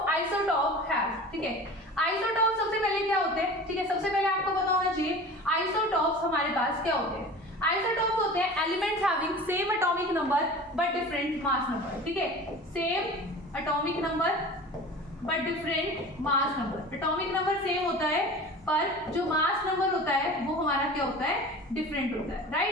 isotope have, ठीक है, आइसोटॉप सबसे पहले क्या होते हैं, ठीक है, सबसे पहले आपको पता होना चाहिए आइसोटॉप्स हमारे पास क्या होते हैं। आइसोटॉप्स होते हैं elements having same atomic number but different mass number, ठीक है, same atomic number but different mass number. Atomic number same होता है पर जो मास नंबर होता है वो हमारा क्या होता है, डिफरेंट होता है,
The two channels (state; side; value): normal; both; correlation 0.38